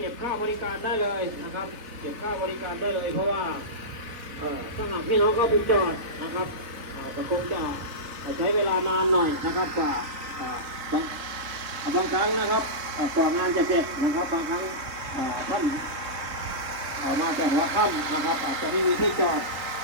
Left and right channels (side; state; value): left; late; 3.8 ms